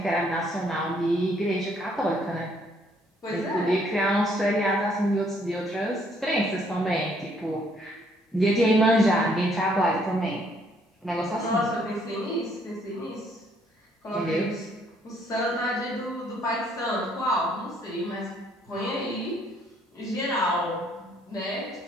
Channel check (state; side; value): normal; both; correlation 0.67